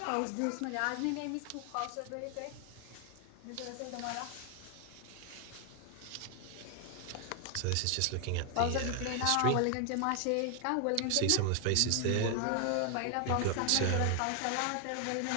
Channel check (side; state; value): both; different; correlation 0.00